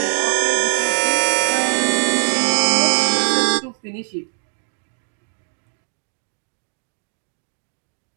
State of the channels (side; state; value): left; silent; digital silence